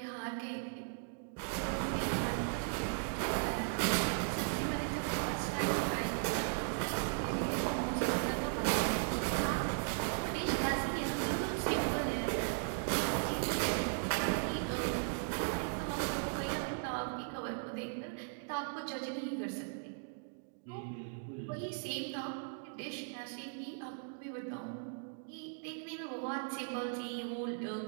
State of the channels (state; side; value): silent; left; digital silence